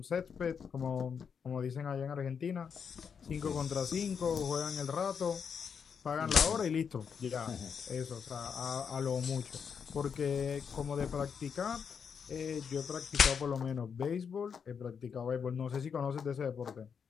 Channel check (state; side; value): quieter; right; 6.7 dB